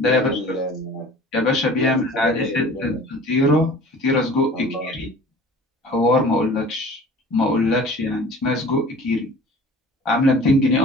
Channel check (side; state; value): both; normal; correlation 0.44